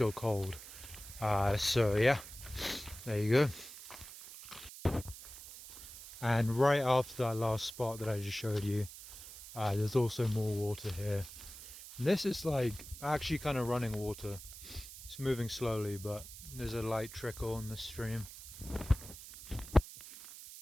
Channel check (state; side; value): noise; right; hiss, 14 dB below the sound